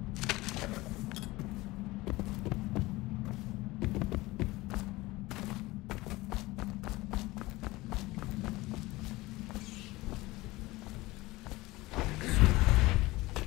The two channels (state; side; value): quieter; right; 20.1 dB